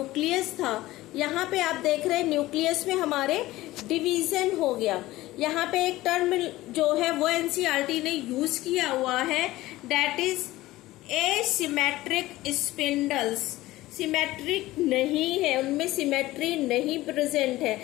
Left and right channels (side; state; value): right; quieter; 17.4 dB